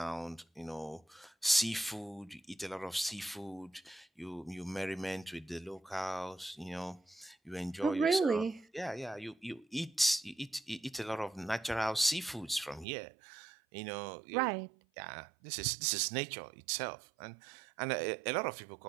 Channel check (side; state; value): left; drops out; at 12.9 s